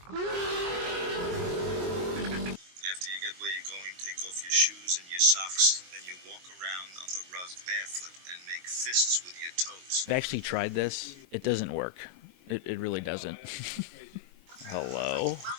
After you get where you're going, take off your shoes and your socks. Then you walk around on the rug barefoot and make fists with your toes. I've actually tried this. It doesn't work. It really doesn't. Hello?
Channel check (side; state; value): left; late; 22 ms